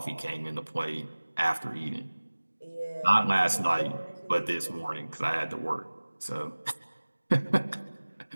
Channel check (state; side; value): inverted; both; correlation -1.00